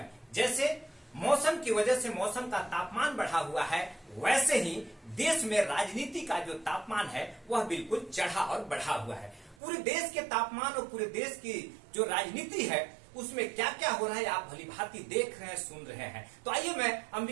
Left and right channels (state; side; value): drops out; left; at 9.6 s